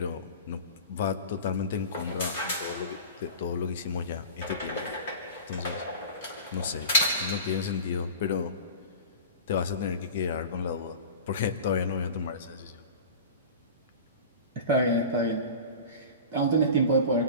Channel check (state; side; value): inverted; both; correlation -0.36